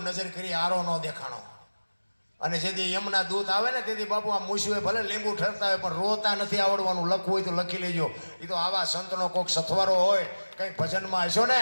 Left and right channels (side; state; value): both; inverted; correlation -1.00